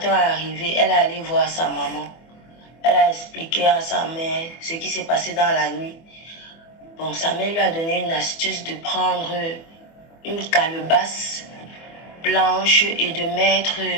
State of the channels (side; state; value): right; late; 24 ms